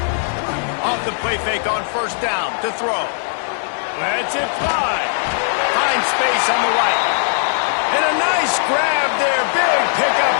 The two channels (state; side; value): silent; right; digital silence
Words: Off the play fake on first down to throw. Lets it fly. Finds space on the right. And a nice grab there. Big pickup